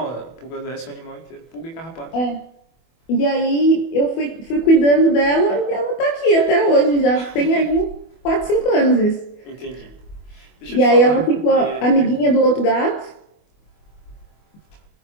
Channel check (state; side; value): late; right; 24 ms